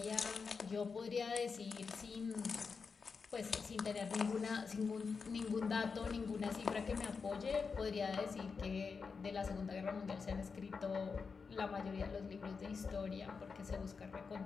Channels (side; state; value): right; quieter; 5.2 dB